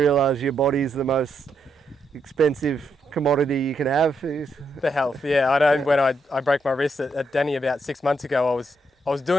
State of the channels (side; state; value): both; normal; correlation 0.79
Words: your body's the most expensive commodity you can have. The health, yeah. I know when I broke my wrist at Denny about 6 months ago, I was